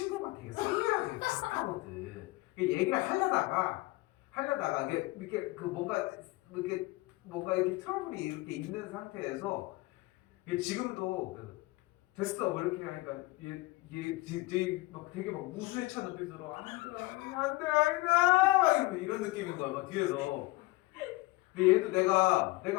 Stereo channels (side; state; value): right; quieter; 21.0 dB